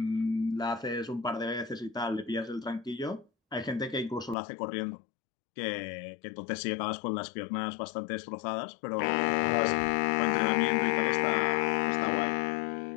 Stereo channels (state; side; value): drops out; right; at 4.4 s